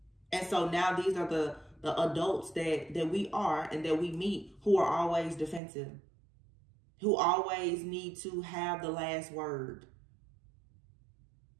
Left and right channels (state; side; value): drops out; left; at 5.6 s